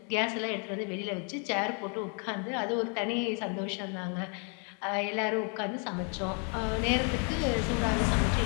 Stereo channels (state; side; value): quieter; right; 38.6 dB